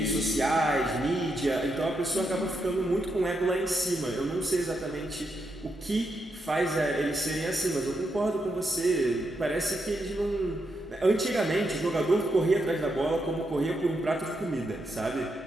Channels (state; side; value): normal; both; correlation 0.83